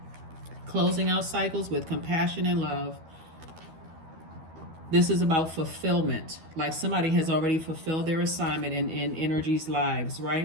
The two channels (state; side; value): late; left; 12 ms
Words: Closing out cycles with compassion and love. This is about fulfillment. Like somebody has already fulfilled their assignment in energy's lives,